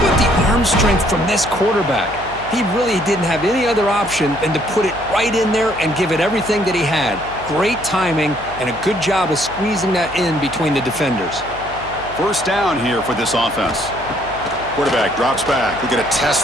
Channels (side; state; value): left; noise; hum, 16 dB below the sound